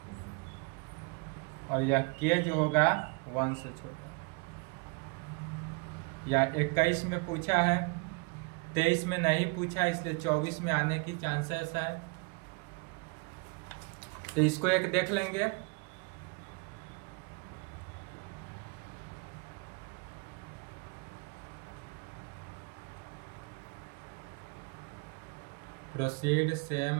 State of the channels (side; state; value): left; quieter; 31.1 dB